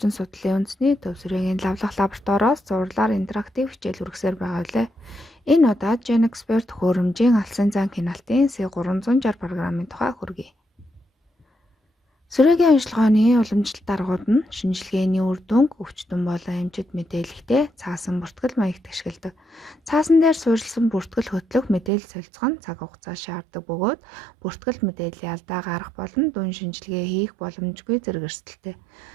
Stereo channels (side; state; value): left; drops out; at 21.9 s